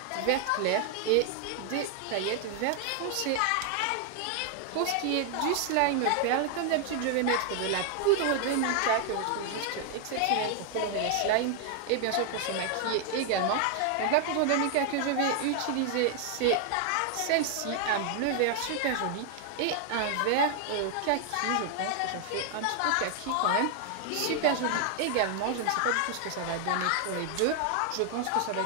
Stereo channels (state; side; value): different; both; correlation 0.00